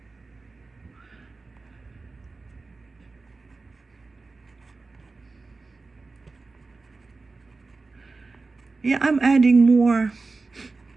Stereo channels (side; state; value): left; quieter; 3.8 dB